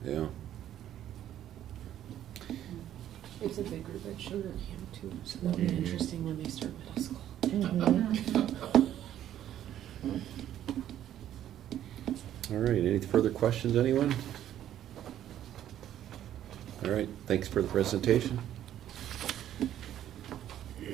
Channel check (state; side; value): quieter; left; 11.5 dB